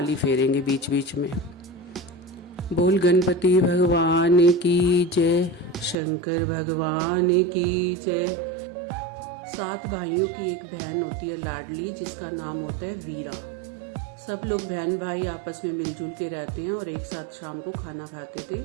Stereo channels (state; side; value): drops out; left; at 6.0 s